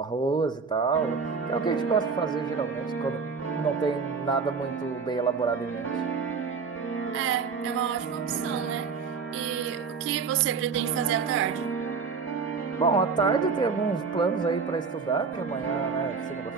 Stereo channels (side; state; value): left; quieter; 5.3 dB